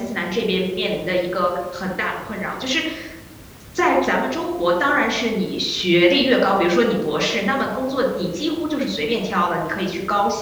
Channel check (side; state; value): both; identical; correlation 1.00